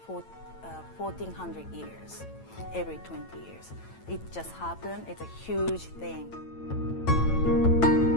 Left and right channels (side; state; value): right; late; 9.0 ms